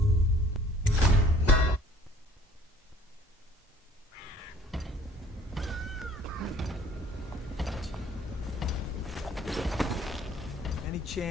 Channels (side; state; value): both; normal; correlation 0.54